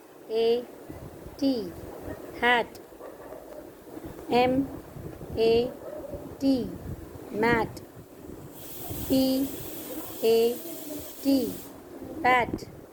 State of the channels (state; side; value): identical; both; correlation 1.00